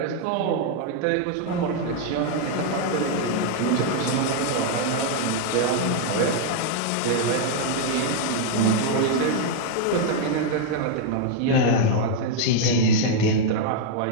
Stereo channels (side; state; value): both; different; correlation 0.00